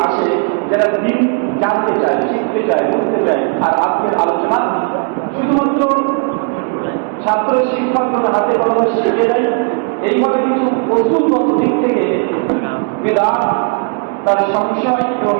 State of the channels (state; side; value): quieter; left; 38.2 dB